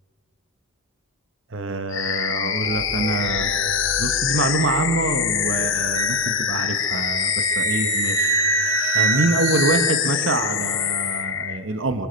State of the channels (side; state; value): both; normal; correlation 0.10